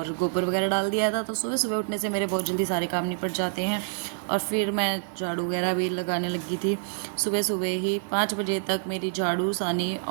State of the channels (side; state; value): left; silent; 60 dB below the other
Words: गोबर वगैरह डाल दिया था। तो सुबह सुबह उठने से मेरे बहुत जल्दी सारे काम निपट जाते हैं। और फिर मैं झाड़ू वगैरह भी लगाने लगी थी। सुबह सुबह ही 5 बजे तक मेरी झाड़ू, सानी